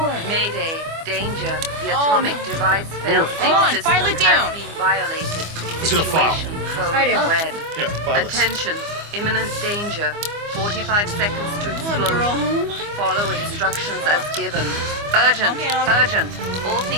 Mayday, danger, the atomic device fail-safe system has been violated. Let's get a file. Situation code red. Here, file this. Attention, imminent danger. 45 seconds to explosion. Follow instructions as given. Urgent, urgent. All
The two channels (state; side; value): late; left; 25 ms